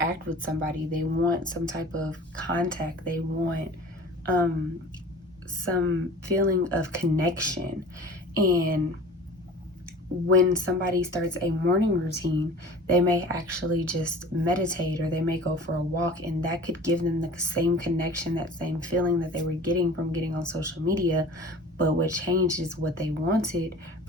with somebody. They want some type of contact. They want some feeling of connection. And when somebody starts a morning routine, they may actually just meditate, or they may go for a walk, and that could give them the same connection, that same feeling that they were getting from getting on social media. But what changed is what they wanted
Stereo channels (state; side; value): normal; both; correlation 0.42